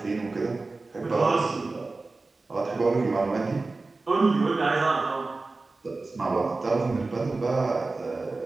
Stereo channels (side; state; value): left; quieter; 3.5 dB